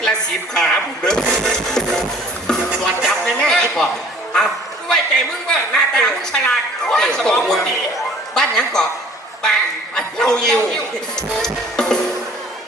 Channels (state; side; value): normal; both; correlation 0.52